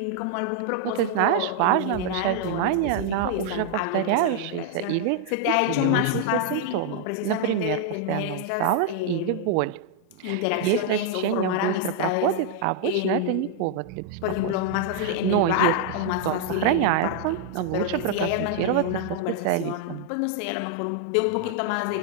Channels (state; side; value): different; both; correlation 0.00